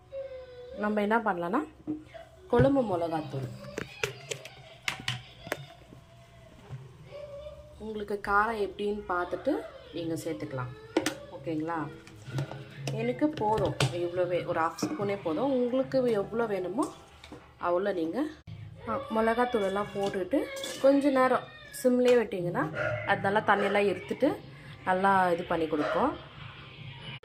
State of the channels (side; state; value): both; identical; correlation 1.00